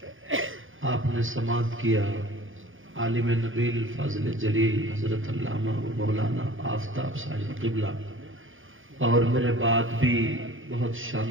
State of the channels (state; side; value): late; left; 0.58 ms